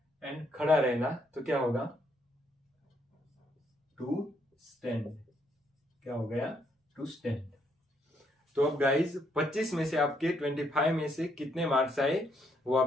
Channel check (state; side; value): normal; both; correlation 0.72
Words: एंड खड़ा रहना तो क्या होगा, टू स्टैंड। क्या हो गया, टू स्टैंड। तो अब गाइज 25 में से आपके 25 में से कितने मार्क्स आए वो